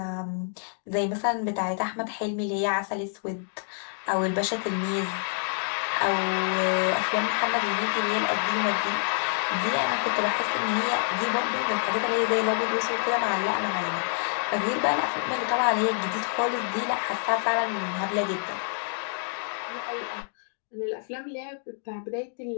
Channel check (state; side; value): silent; right; digital silence